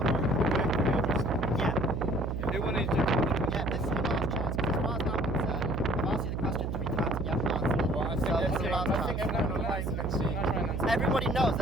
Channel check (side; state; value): right; noise; hum, 2 dB below the sound